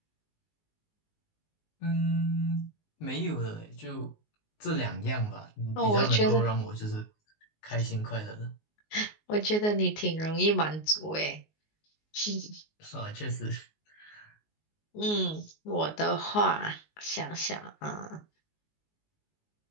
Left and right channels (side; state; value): right; late; 19 ms